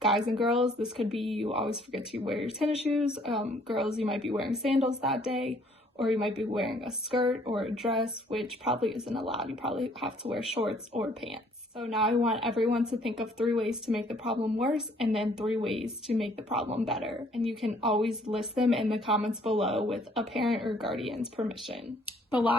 and girls, this could be you always forget to wear your tennis shoes. Girls, you might be wearing sandals that day, or you might be wearing a skirt or a dress, which probably isn't allowed. You probably have to wear shorts or pants. So now I want everyone to think of 3 ways to make the problem worse and then 3 ways to make the problem better. And you can always list them in the comments below with a parent or guardian's permission. The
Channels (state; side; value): normal; both; correlation 0.61